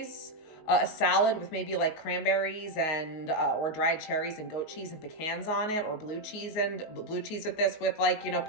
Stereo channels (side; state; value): right; late; 19 ms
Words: A salad with maybe like cranberries and or dried cherries and goat cheese and pecans on it, or blue cheese with this with like, you know,